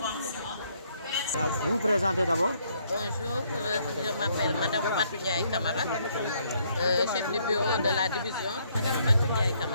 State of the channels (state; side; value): inverted; both; correlation -0.69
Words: Vous vous présentez d'abord? Bonjour, je m'appelle Madame Fatou Ndiaye Camara, chef du bureau de la division, Madame Fatou Ndiaye